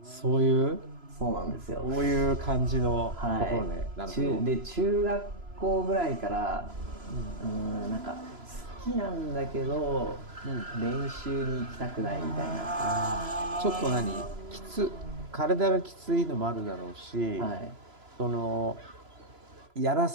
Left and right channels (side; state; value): left; late; 3.0 ms